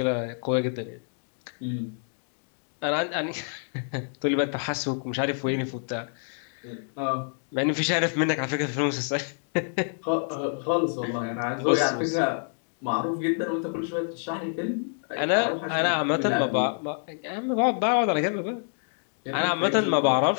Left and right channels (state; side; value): silent; right; digital silence